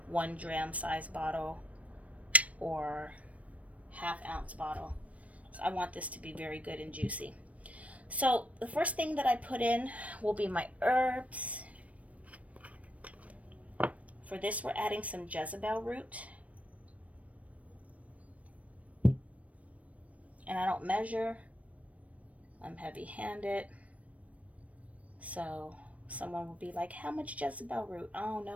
1 gram size bottle or 1/2 ounce bottle. So I want this to be very good and juicy. So the first thing that I put in will be my herbs. For this, we're adding some Jezebel root. And I don't measure. I'm heavy-handed. So someone will be like, how much Jezebel root? I don't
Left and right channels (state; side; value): late; left; 0.066 ms